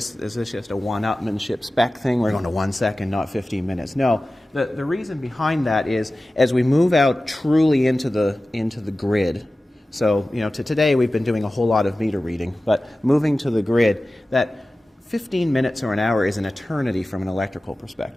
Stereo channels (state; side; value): normal; both; correlation 0.96